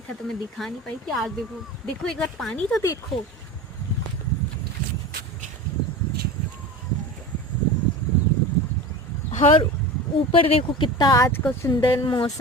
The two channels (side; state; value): both; normal; correlation 0.31